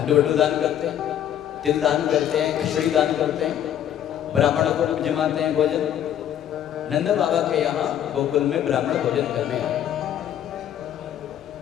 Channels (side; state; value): right; quieter; 10.5 dB